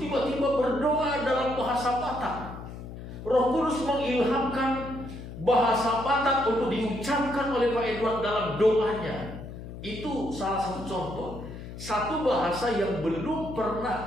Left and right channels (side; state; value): left; noise; hum, 11 dB below the sound